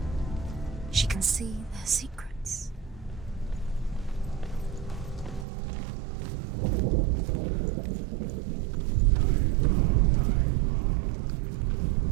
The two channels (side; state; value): left; drops out; at 5.5 s